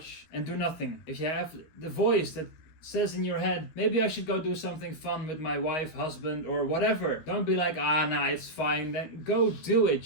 and do nothing. If you have the voice that says in your head, maybe I should go do something fun with my wife, husband, or whatever, don't be like, nah, it's fine, then go do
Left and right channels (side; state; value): right; late; 13 ms